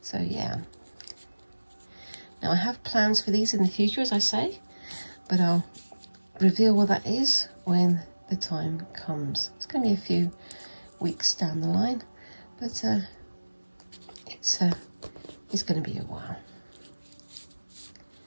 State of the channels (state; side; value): inverted; both; correlation -1.00